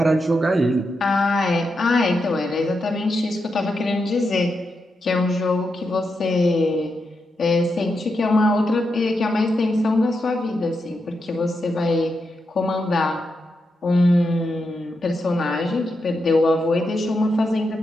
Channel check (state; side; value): normal; both; correlation 0.85